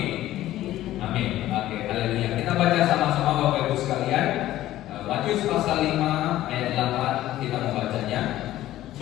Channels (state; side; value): quieter; right; 14.3 dB